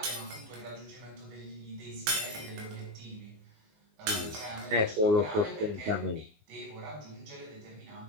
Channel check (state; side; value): late; left; 19 ms